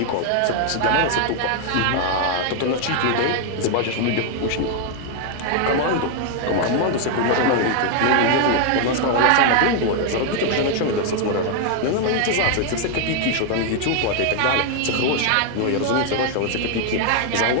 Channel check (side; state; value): both; different; correlation 0.00